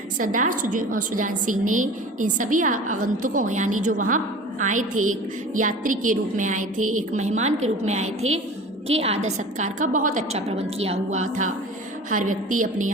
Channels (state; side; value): normal; both; correlation 0.39